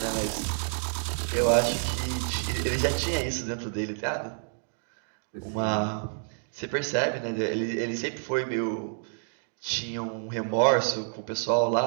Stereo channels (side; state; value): left; silent; digital silence